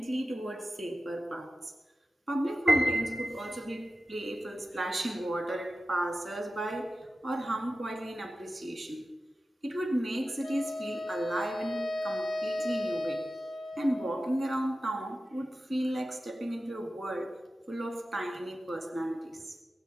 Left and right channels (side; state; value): both; normal; correlation 0.94